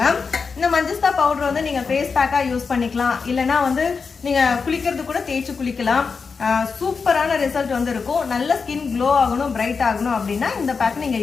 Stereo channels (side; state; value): right; quieter; 5.2 dB